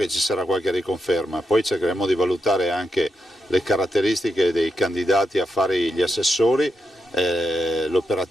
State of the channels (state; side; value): normal; both; correlation 0.84